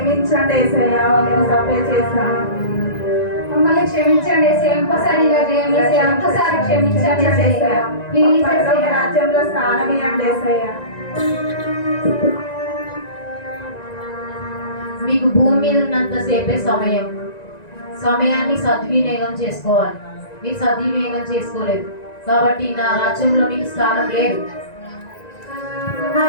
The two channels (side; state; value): right; late; 1.9 ms